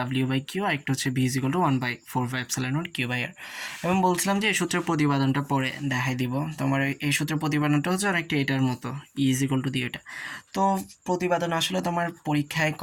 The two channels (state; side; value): identical; both; correlation 1.00